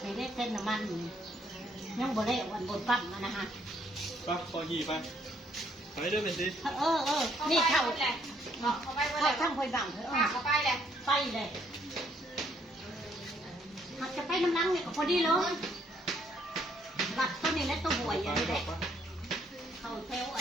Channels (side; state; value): both; normal; correlation 0.68